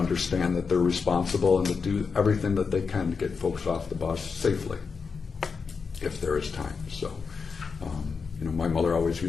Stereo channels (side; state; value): right; quieter; 5.3 dB